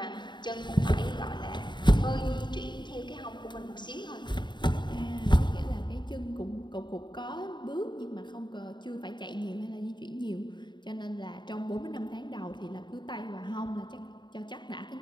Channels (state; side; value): late; right; 0.22 ms